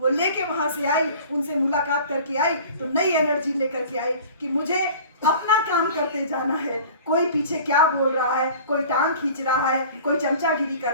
लेके वहां से आई, उनसे मुलाकात करके आई तो नई एनर्जी लेकर के आई कि मुझे अपना काम करते जाना है। कोई पीछे क्या बोल रहा है, कोई टांग खींच रहा है, कोई चमचागिरी कर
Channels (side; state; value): both; inverted; correlation -0.43